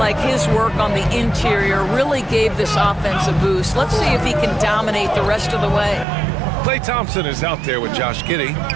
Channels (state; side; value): drops out; left; at 6.1 s